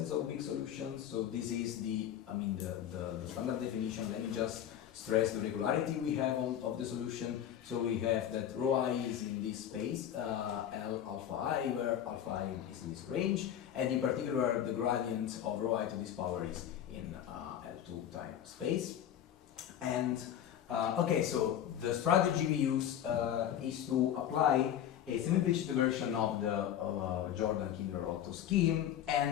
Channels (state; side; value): quieter; right; 10.4 dB